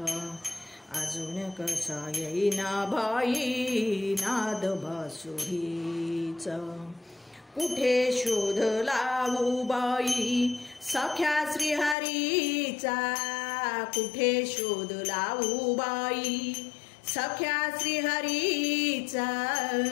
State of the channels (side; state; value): right; drops out; at 12.0 s